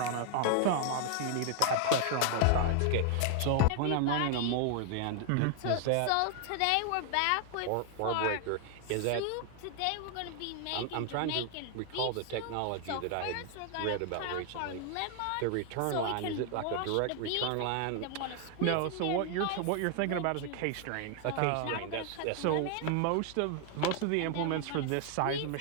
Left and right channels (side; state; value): both; different; correlation 0.00